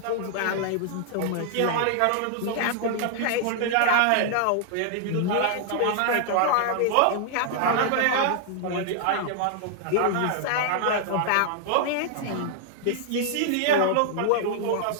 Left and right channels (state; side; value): different; both; correlation -0.01